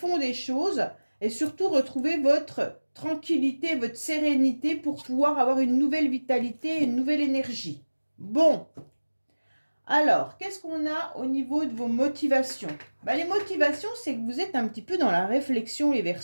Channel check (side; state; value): both; inverted; correlation -1.00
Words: des choses. et surtout retrouver votre tranquillité, votre sérénité pour pouvoir avoir une nouvelle vitalité, une nouvelle énergie. Bon, alors, qu'est-ce qu'on a au niveau de vos motivations? Les motivations, c'est que vous êtes un petit peu dans la réflexion, les